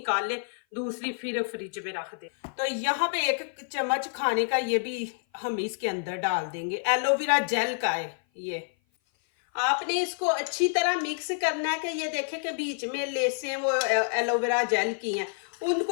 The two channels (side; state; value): right; silent; 55 dB below the other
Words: ले, दूसरी फिर फ्रिज में रख दे। तो यहाँ पे 1 चम्मच खाने का ये भी हम इसके अंदर डाल देंगे। एलोवेरा जेल का है ये। आपने इसको अच्छी तरह मिक्स करना है कि ये देखें कि बीच में लेसें वो एलोवेरा जेल की हैं,